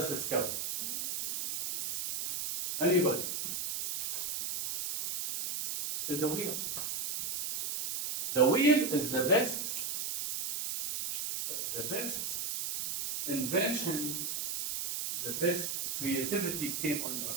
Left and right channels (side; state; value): right; noise; hiss, 3 dB below the sound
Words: discovered it. Anybody? The wheel. The wheel is the best invention, the best creativity came on earth.